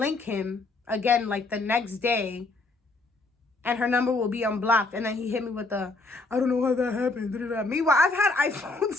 him again like the next day and her number will be unblocked, and then he hit me with the, I don't know how that happened. Meanwhile, I've had iPhones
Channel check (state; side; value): quieter; right; 3.4 dB